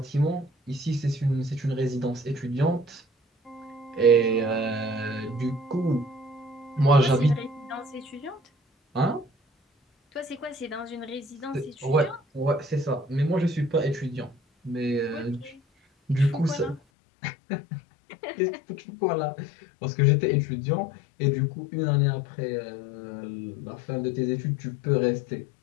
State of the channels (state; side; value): drops out; right; at 16.8 s